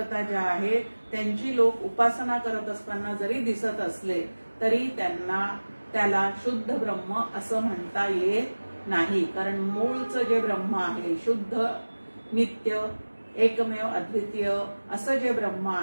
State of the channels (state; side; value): inverted; both; correlation -1.00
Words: ज्या आहेत त्यांची लोक उपासना करत असताना जरी दिसत असले तरी त्याला शुद्ध ब्रह्म असं म्हणता येत नाही. कारण मूळचं जे ब्रह्म आहे, शुद्ध नित्य एकमेव अद्वितीय असं जे ब्रह्म